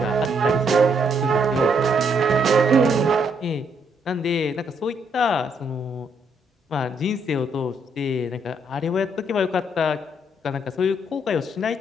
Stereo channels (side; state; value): both; normal; correlation 0.73